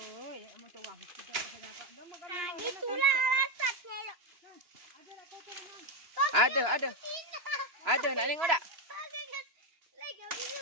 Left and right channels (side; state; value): left; late; 2.9 ms